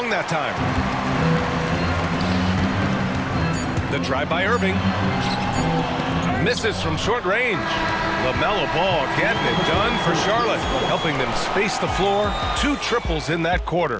that time. The drive by Irving. Misses from short range. LaMelo Ball getting it done for Charlotte, helping them space the floor. 2 triples in that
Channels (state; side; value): identical; both; correlation 1.00